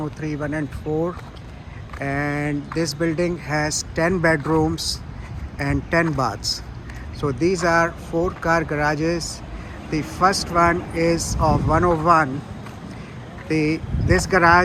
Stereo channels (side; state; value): both; identical; correlation 1.00